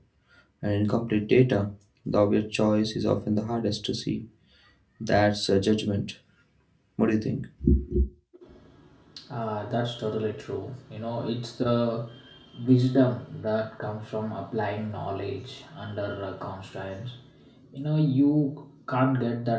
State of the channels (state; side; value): identical; both; correlation 1.00